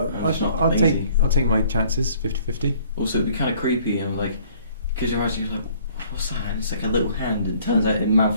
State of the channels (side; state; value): both; inverted; correlation -0.58